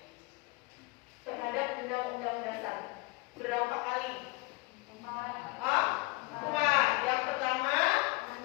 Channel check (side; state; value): right; quieter; 24.3 dB